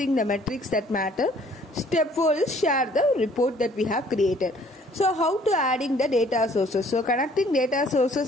the metrics that matter. Step 4 is share the report that we have created. So how to adding the data sources? So connecting data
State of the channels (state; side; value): normal; both; correlation 0.58